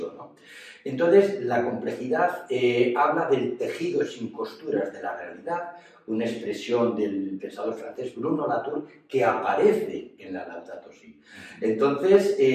¿no? Entonces, la complejidad habla del tejido sin costuras de la realidad, una expresión del pensador francés Bruno Latour que aparece en la Laudato Si. Entonces,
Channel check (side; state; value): both; identical; correlation 1.00